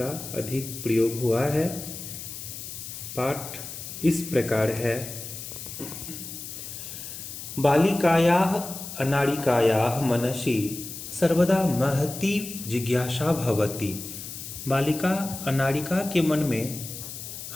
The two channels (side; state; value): left; noise; hiss, 10 dB below the sound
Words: अधिक प्रयोग हुआ है। पाठ इस प्रकार है। बालिकायाः अनाड़िकायाः मनसि सर्वदा महती जिज्ञासा भवति। बालिका अनाड़िका के मन में